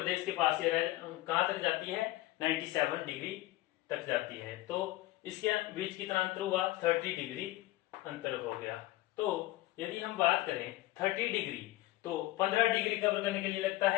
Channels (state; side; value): quieter; right; 17.3 dB